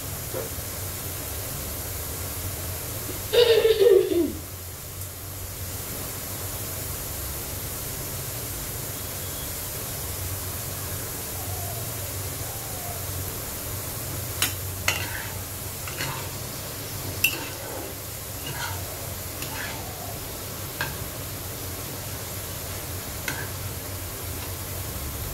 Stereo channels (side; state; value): both; identical; correlation 1.00